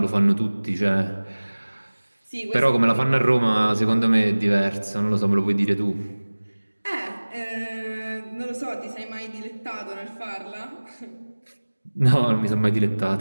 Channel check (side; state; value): both; inverted; correlation -1.00